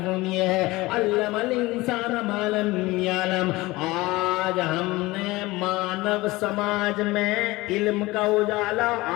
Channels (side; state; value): right; quieter; 20.4 dB